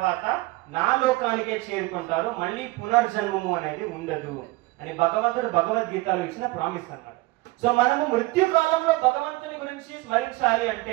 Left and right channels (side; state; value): left; quieter; 21.0 dB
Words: నా లోకానికే చేరుకుంటారు, మళ్ళీ పునర్జన్మము అనేది ఉండదు అని భగవంతుడు భగవద్గీతలో ఇచ్చిన ప్రామిస్ అన్నమాట. సో మనము మృత్యుకాలంలో భగవంతుని గురించి స్మరించాలి